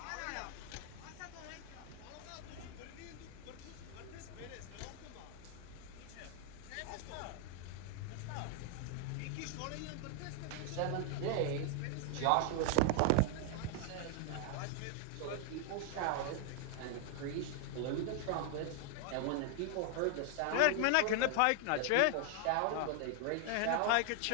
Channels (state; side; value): different; both; correlation 0.00